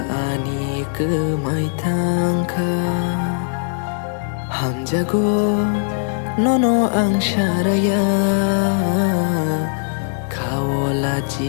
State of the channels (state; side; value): silent; right; digital silence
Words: ani ke mai tangka Ham jago nono ang syaraya Kawola